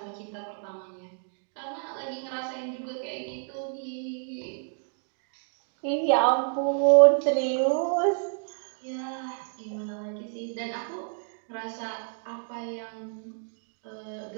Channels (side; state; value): left; silent; 58 dB below the other